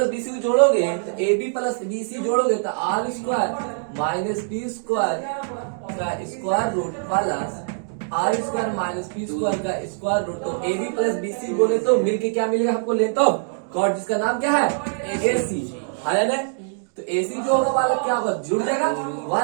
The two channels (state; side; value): silent; left; digital silence